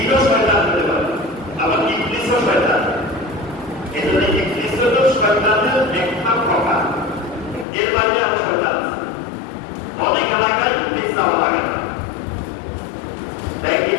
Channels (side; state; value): right; drops out; at 7.7 s